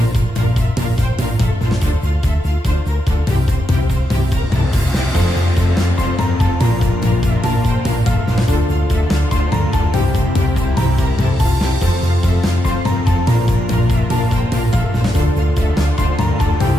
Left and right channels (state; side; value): normal; both; correlation 0.84